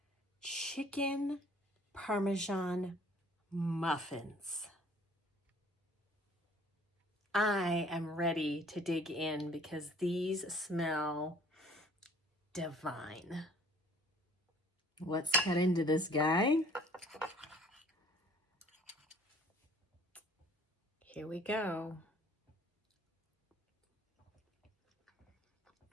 chicken Parmesan muffins. I am ready to dig in because these smell divine. Let's cut into this guy. Here we go.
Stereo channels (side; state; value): both; normal; correlation 0.55